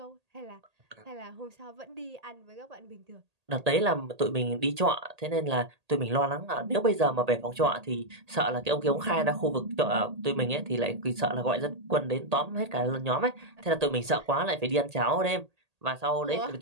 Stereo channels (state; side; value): late; left; 1.8 ms